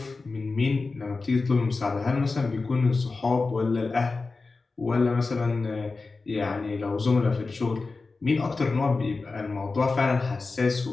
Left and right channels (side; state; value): right; quieter; 3.9 dB